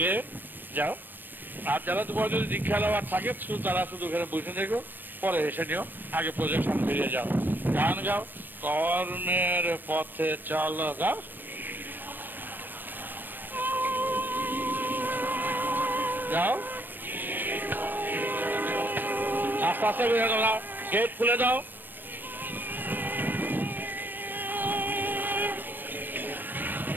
গেয়ে যাও। আর যারা তোমার যদি দীক্ষা দেওয়ার থাকে তারা শুধু এখানে বসে থেকো, পরে এসে নিও, আগে প্রজেকশন বেরিয়ে যাও। গান গাও, কর্মের পথে চলো, গাও। যাও আস্তে আস্তে বেরিয়ে দাও, গেট খুলে দাও।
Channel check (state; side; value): late; left; 0.092 ms